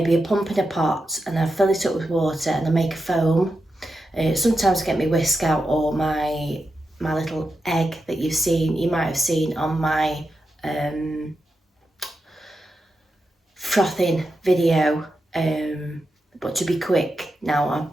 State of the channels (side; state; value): both; normal; correlation 0.88